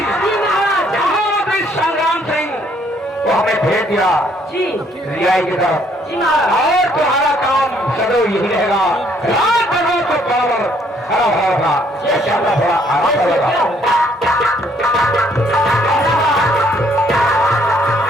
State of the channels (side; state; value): both; normal; correlation 0.66